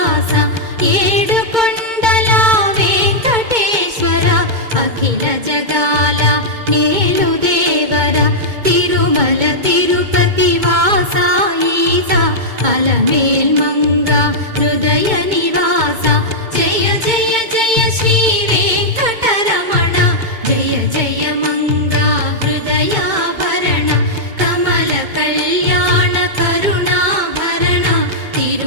ఏడుకొండల వెంకటేశ్వర అఖిల జగాల నేలు దేవర తిరుమల తిరుపతి వాస ఈస అలమేల్మంగ హృదయ నివాస జయ జయ జయ శ్రీ వెంకటరమణ జయ జయ మంగ హృదయాభరణ కమల కళ్యాణ కరుణాభరణ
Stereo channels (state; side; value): late; left; 2.2 ms